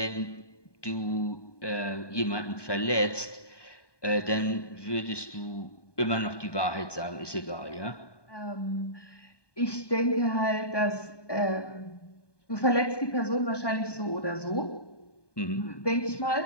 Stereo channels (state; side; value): late; right; 1.2 ms